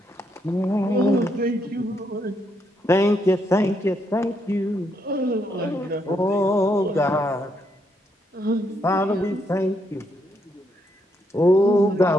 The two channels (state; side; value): normal; both; correlation 0.77